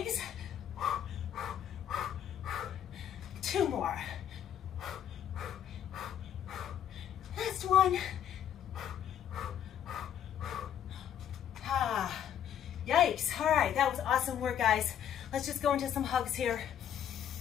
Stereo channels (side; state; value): right; quieter; 9.8 dB